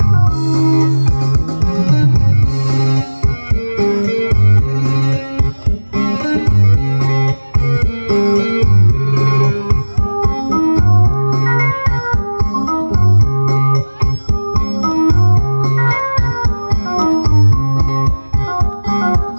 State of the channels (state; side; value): inverted; both; correlation -1.00